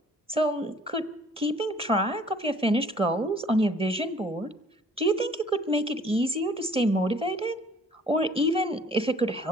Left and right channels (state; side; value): normal; both; correlation 0.56